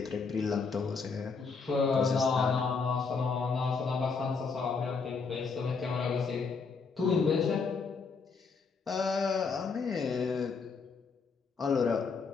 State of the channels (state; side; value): quieter; right; 5.0 dB